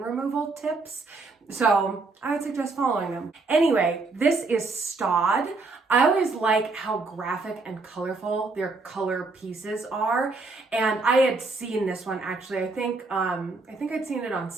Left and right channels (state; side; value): quieter; left; 3.7 dB